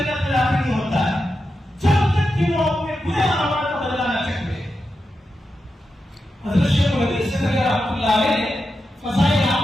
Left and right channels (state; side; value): normal; both; correlation 0.89